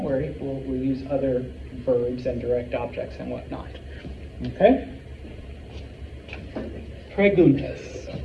worry, we'll use other verbs and direct objects and whatnot. Okay? Preguntas.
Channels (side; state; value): both; identical; correlation 1.00